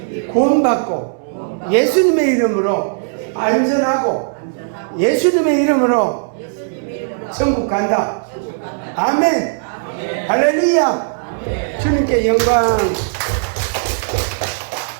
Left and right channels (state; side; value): silent; left; 68 dB below the other